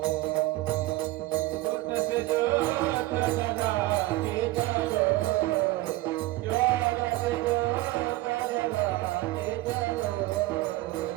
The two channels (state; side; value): quieter; left; 18.6 dB